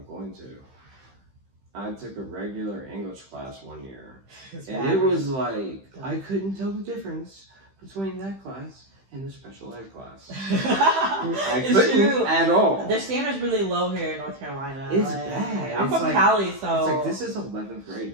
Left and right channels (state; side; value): late; left; 15 ms